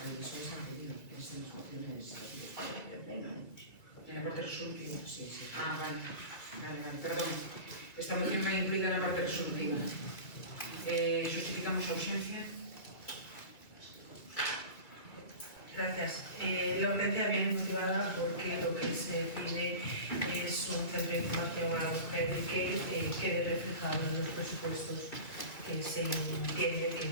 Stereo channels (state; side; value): late; right; 2.4 ms